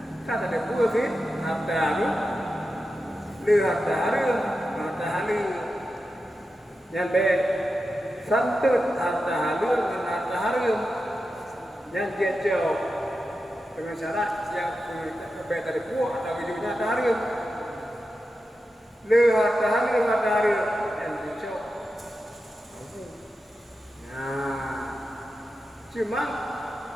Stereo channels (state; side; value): normal; both; correlation 0.90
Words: Kata ada buah sih. Ada tu. Lihat hari. Yang baik. Santut harta halus dan harta harum yang dia jauh dengan syarat yang baik dari buah atau wujudnya harta harum le harta harum yang dia jauh. Nah, cuma